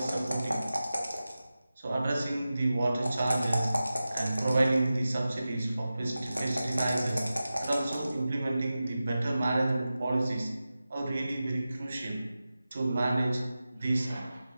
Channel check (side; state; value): both; inverted; correlation -0.94